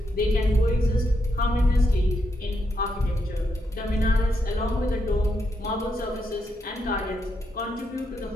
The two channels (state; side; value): normal; both; correlation 0.81